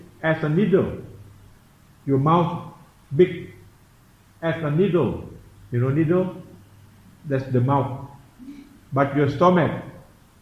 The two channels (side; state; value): both; identical; correlation 1.00